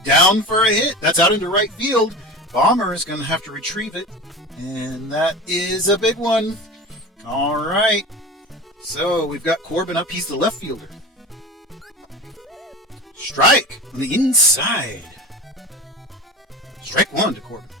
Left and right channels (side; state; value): both; normal; correlation 0.31